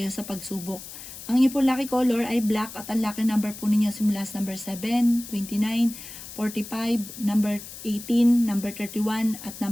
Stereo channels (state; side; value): noise; left; hiss, 13 dB below the sound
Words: sa pagsubok. Ang inyong po lucky color ay black at ang lucky number po ninyo simula sa number 7, 29, 45, number 18, number 31 at